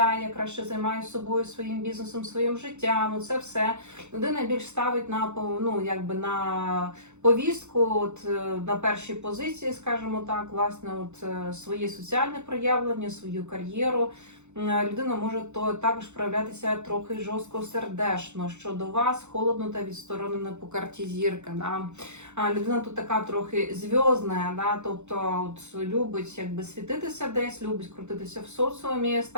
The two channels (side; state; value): left; late; 0.83 ms